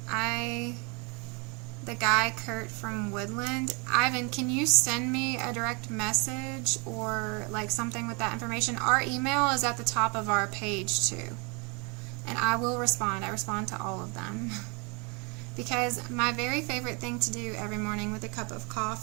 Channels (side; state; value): left; quieter; 32.3 dB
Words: the guy Kurt from Woodland. Ivan, can you send me a direct message or like something with that information? Our email is at the top of our page too, and I will respond. I respond to all of them because my very favorite thing to do every morning with a cup of